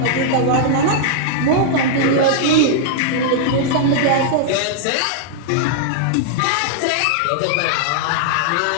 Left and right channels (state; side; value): different; both; correlation -0.01